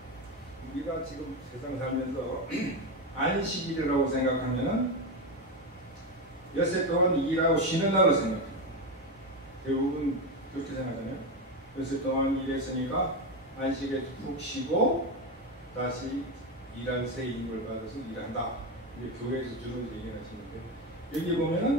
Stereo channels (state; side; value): normal; both; correlation 0.14